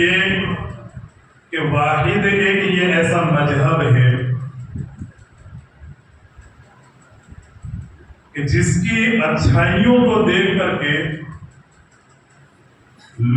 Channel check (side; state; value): both; identical; correlation 1.00